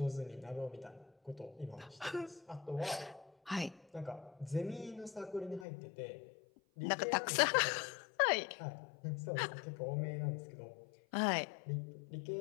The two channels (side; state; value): right; drops out; at 5.7 s